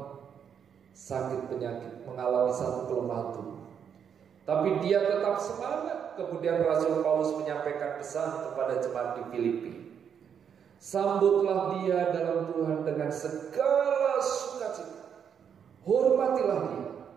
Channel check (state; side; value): quieter; left; 7.8 dB